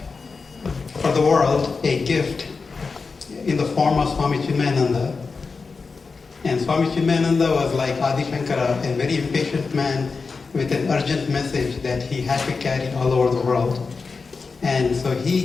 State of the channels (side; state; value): right; quieter; 4.6 dB